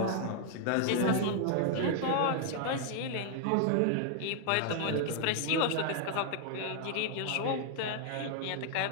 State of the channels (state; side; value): different; both; correlation 0.00